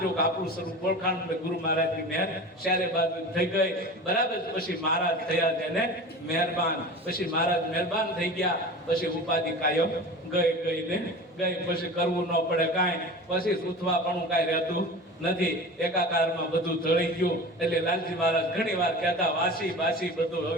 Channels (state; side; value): normal; both; correlation 0.35